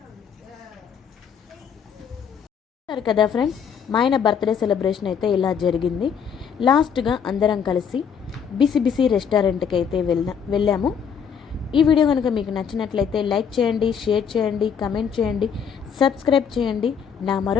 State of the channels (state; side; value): quieter; right; 7.2 dB